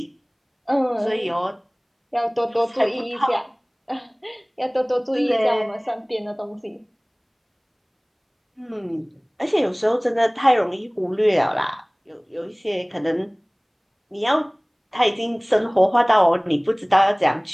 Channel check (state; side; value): identical; both; correlation 1.00